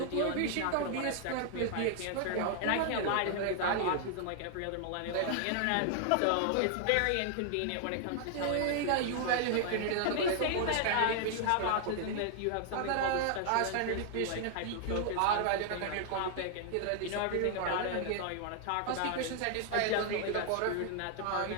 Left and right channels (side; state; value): both; different; correlation 0.00